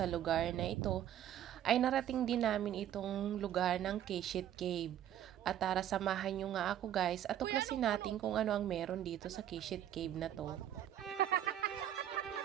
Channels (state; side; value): quieter; left; 11.1 dB